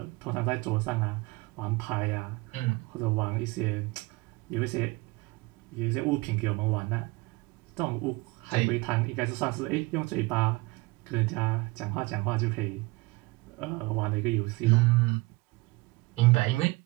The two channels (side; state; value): left; quieter; 23.3 dB